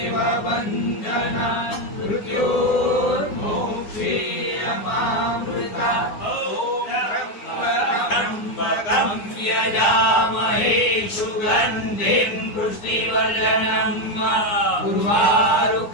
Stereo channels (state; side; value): late; right; 9.7 ms